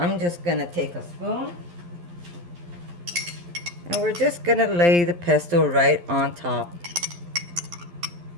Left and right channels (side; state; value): left; late; 11 ms